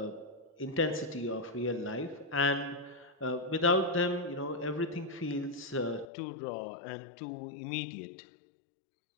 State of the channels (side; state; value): right; drops out; at 6.1 s